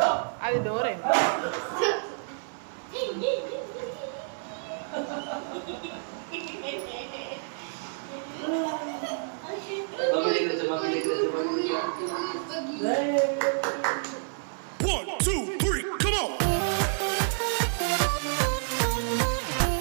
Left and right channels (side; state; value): left; silent; 59 dB below the other